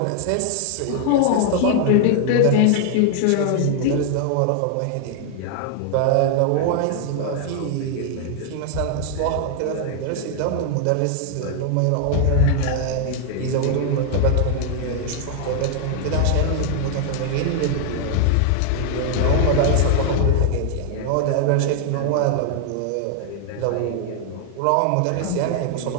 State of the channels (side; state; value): both; different; correlation 0.00